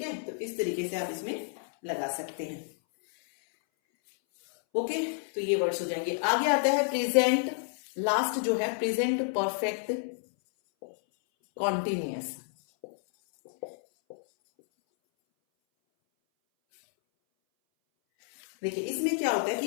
है, तो इस तरीके से आप इसमें लगा सकते हैं। ओके, तो ये वर्ड्स हो जाएंगे। आगे आता है प्रेजेंट, लास्ट जो है प्रेजेंट परफेक्ट कॉन्टिन्यूअस। देखिए इसमें क्या होता है कि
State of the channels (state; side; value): silent; right; 58 dB below the other